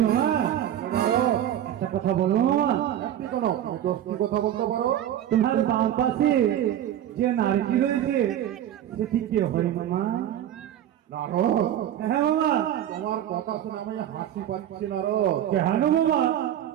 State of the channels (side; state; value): left; quieter; 11.2 dB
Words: মামা একটা কথা বলো মামা। একটি কোনো দশটি কথা বলতে পারো? তোমার বাম পাশে যে নারী রয়েছে সেটি কে হয় মামা? নারদ। হ্যাঁ মামা। তোমার কথা শুনে আমি হাসি পাচ্ছি নারদ। কেন মামা?